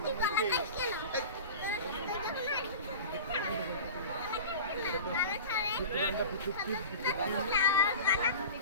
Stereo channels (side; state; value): both; inverted; correlation -0.35